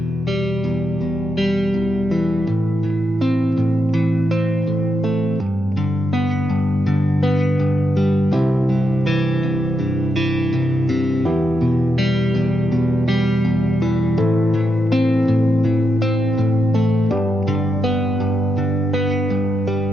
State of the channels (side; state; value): both; normal; correlation 0.84